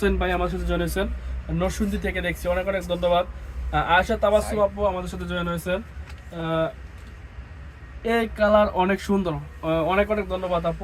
ভাই আমার সাথে জয়েন হয়েছেন, নরসিংদী থেকে দেখছি, অনেক অনেক ধন্যবাদ। আয়েশা তাবাসসুম আপু আমাদের সাথে জয়েন হয়েছেন। এই কালার অনেক সুন্দর, অনেক অনেক ধন্যবাদ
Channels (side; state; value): both; identical; correlation 1.00